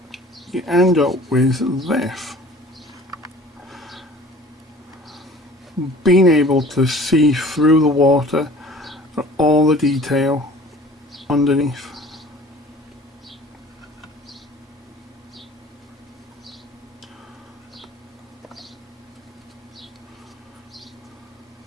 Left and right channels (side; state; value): both; normal; correlation 0.47